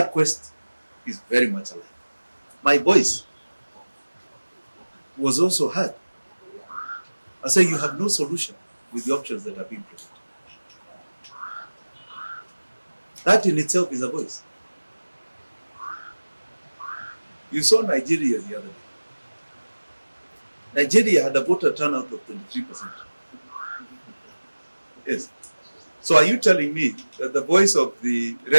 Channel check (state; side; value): inverted; both; correlation -1.00